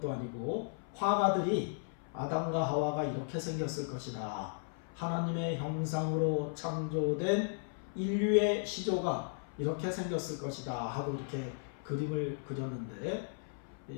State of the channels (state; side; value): silent; right; 54 dB below the other